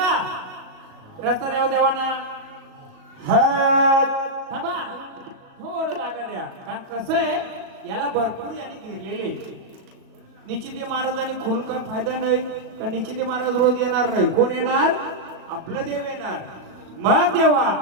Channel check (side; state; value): left; late; 37 ms